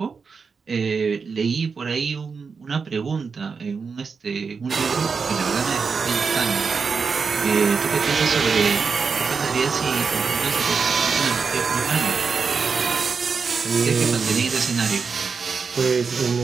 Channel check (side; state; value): left; quieter; 5.3 dB